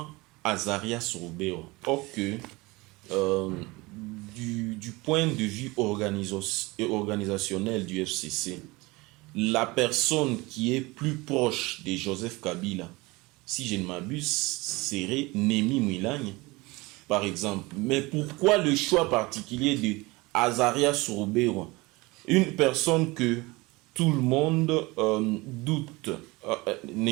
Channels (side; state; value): left; quieter; 23.0 dB